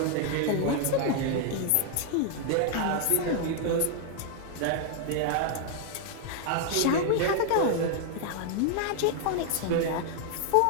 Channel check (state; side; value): different; both; correlation 0.00